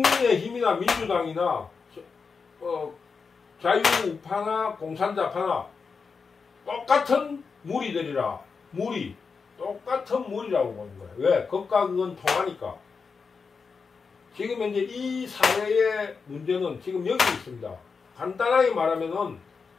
민주당이나 자유우파나 공산자파나 똑같은 무리들이라, 똑같은 무리라고 보는 거예요. 왜? 극과 극은 통하니까. 지금 현재 이 사회의 문제는 지금 여기 있습니다. 간단하게 말하면은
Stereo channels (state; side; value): quieter; right; 5.2 dB